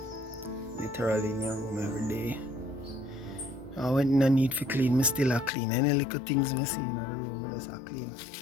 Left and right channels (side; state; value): right; drops out; at 5.5 s